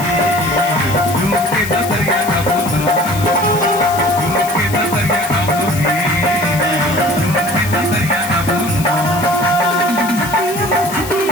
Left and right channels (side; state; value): left; noise; hiss, 11 dB below the sound